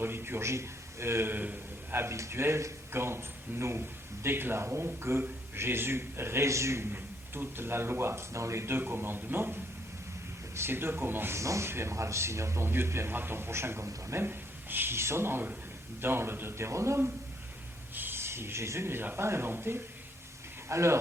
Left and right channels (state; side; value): normal; both; correlation 0.70